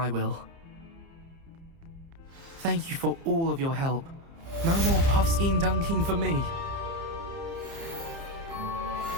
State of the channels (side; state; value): left; late; 30 ms